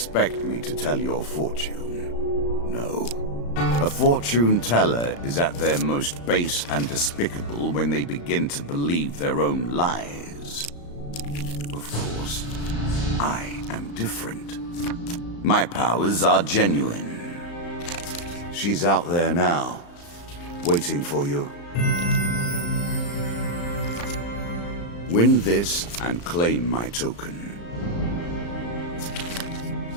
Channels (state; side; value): late; right; 35 ms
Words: me to tell your fortune? No. A fortune teller is at their most base and despicable when they begin to believe their own lies. Of course, I am different. My powers are genuine. She's out there now, waiting for you. Win this and claim my token.